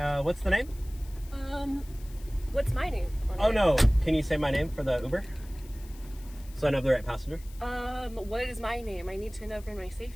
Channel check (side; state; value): left; noise; hiss, 22 dB below the sound